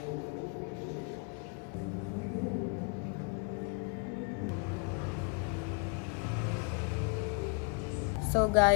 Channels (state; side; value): quieter; right; 36.5 dB